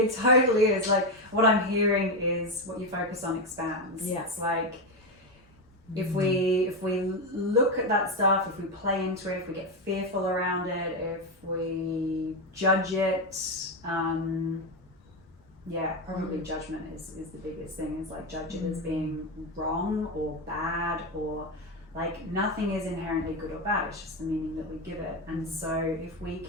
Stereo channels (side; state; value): both; normal; correlation 0.11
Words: totally is. Like, what I'm hearing is what you focus on expands. Yeah. It's like, if we look at that stuff, if we play into it, if we get fearful around it, if we judge it, probably judgment is the biggest thing. Is like, judge it as being wrong or bad, or like, nothing is inherently good or bad. It's just the meaning that we give it. And so if we